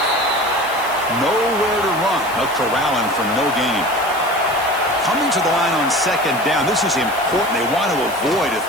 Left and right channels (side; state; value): left; noise; hiss, 15 dB below the sound